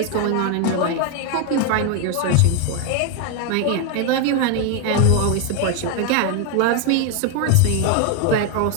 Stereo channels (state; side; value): different; both; correlation 0.01